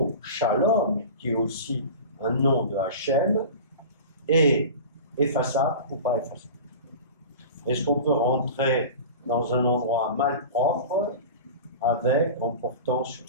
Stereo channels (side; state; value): both; inverted; correlation -0.33